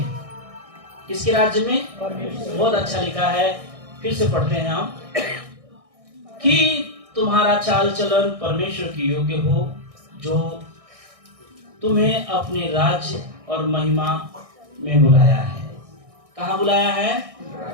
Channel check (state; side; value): late; left; 1.6 ms